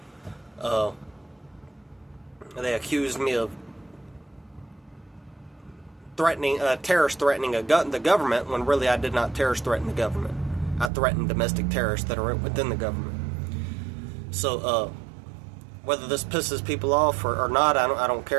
They accused me of terrorist threatening the government, when really I did not terrorist threaten the government. I threatened domestic terrorists that are within the government. So, whether this pisses people off or not, I don't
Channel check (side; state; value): left; drops out; at 10.9 s